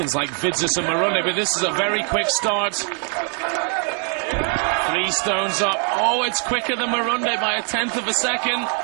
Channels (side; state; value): left; quieter; 37.9 dB